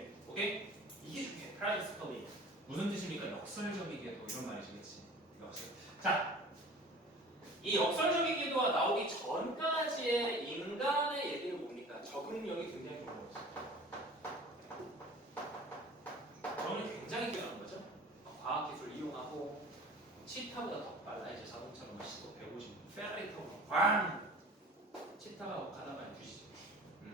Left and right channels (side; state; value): both; normal; correlation 0.43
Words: 오케이? 이게 중요해. paradoxically. 무슨 뜻입니까? 역설적이게도 이런 말이시겠지. 자, 이 역설적이게도가 나오기 전까지의 인간의 얘기는 뭡니까? 적응력이 굉장히 좋은 거지. 적응력이 굉장히 뛰어난 거죠. 과학기술을 이용하고 치타보다 더 빨라. 이제 자동차로 시속 150, 페라리 타고 꽝! 치타가 가다가 뒤지죠.